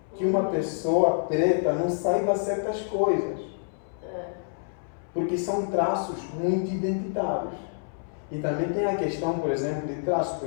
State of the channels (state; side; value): silent; right; 60 dB below the other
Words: que uma pessoa preta não saiba certas coisas. Porque são traços muito identitários. E também tem a questão, por exemplo, de traços. Por